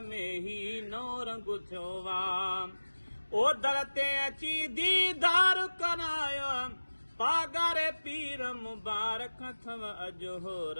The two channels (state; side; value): inverted; both; correlation -1.00